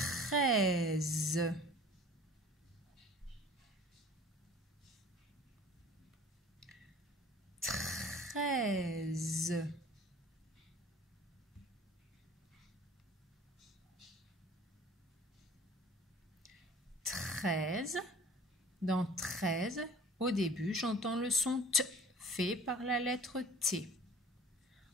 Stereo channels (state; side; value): normal; both; correlation 0.47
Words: 13. Dans 13, au début, j'entends le son T fait par la lettre T.